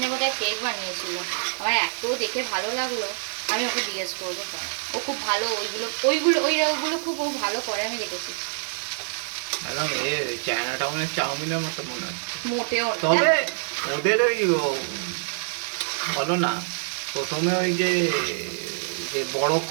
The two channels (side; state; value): left; silent; digital silence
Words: বোধহয় কেক বানিয়েছিল, আমার এত দেখে ভালো লাগলো, আমি ওকে জিজ্ঞেস করবো। ও খুব ভালো ওইগুলো খুব ও ভালো করে, আমি দেখেছি। একদম চায়না টাউনের চাউমিনের মতো মনে হচ্ছে। মোটেও না। তবে ওদের ওই বলো না, প্রথমে ওই যে বড়